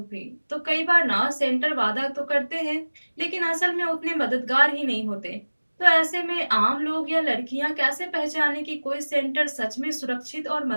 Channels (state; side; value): inverted; both; correlation -1.00